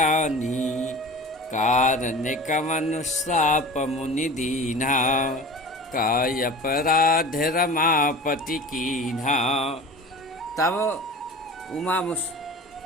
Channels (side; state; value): both; normal; correlation 0.37